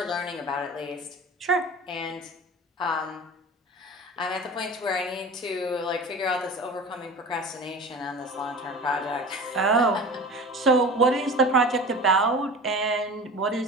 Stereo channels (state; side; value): normal; both; correlation 0.37